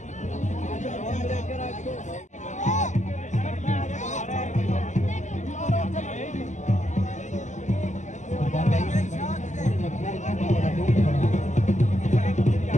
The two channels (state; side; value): late; right; 0.35 ms